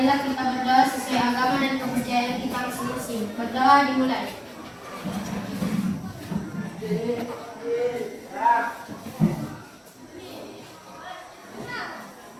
Marilah kita berdoa sesuai agama dan kepercayaan kita masing-masing. Berdoa dimulai.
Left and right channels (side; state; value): both; identical; correlation 1.00